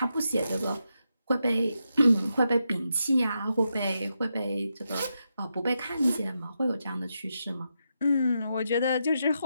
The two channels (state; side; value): inverted; both; correlation -0.85